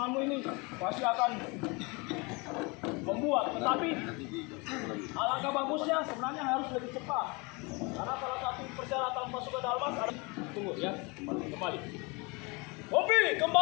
ini pasti akan membuat. Tetapi alangkah bagusnya sebenarnya harus lebih cepat. Karena salah satu persyaratan pasukan Dalmas adalah tunggu ya, kembali. Kopi,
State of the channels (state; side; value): quieter; right; 28.2 dB